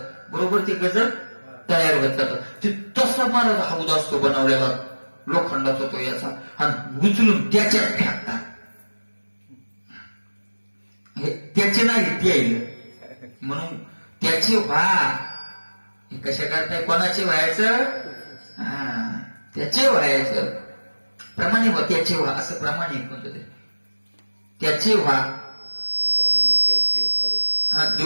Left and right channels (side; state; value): both; inverted; correlation -1.00